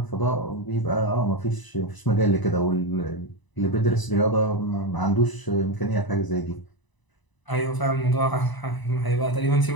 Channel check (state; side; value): late; right; 1.0 ms